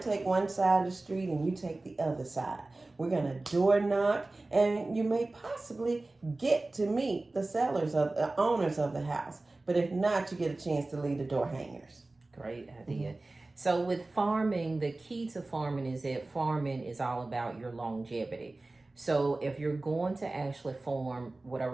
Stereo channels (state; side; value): quieter; left; 3.0 dB